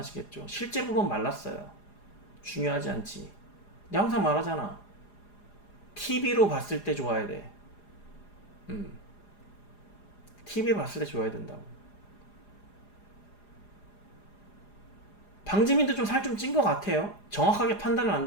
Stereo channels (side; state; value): right; late; 4.9 ms